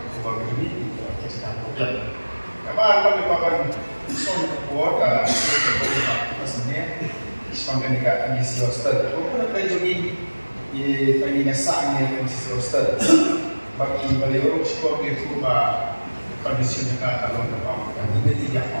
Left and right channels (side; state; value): both; inverted; correlation -1.00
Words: kubah ini kita kerja. Apa kami akan son buat sebenarnya sepanjang dekat misi hostel. Aku nak pergi di pagi nasanya misi hostel. Bagi beliau sekolah itu kondisi mereka kalau berapa ini tidak